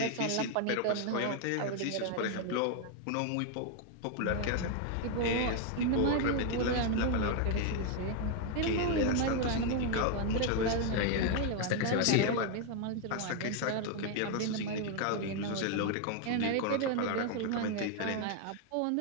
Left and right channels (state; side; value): different; both; correlation 0.01